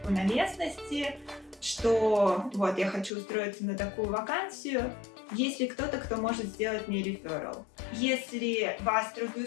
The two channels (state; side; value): drops out; right; at 3.1 s